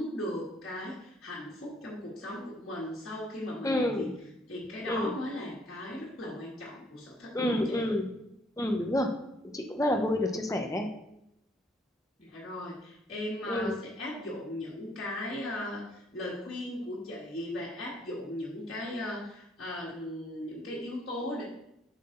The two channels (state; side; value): normal; both; correlation 0.66